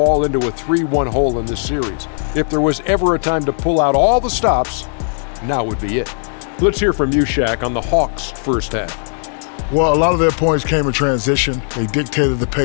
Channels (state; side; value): silent; right; digital silence